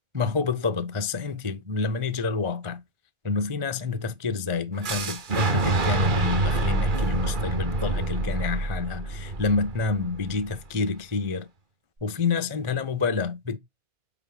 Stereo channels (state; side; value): late; left; 1.5 ms